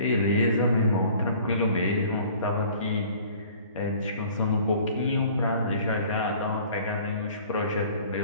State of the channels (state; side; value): inverted; both; correlation -0.51